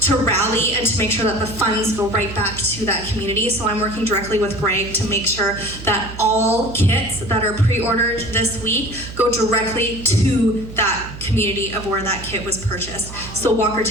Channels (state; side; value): noise; right; hum, 12 dB below the sound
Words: to rally and to make sure that the funds go right back to that community. So I'm working directly with Greg to make sure that all kits that are pre-ordered this week go directly to that community of where that kit was purchased. So